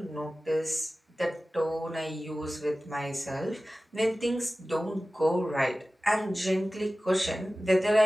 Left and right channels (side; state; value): both; normal; correlation 0.96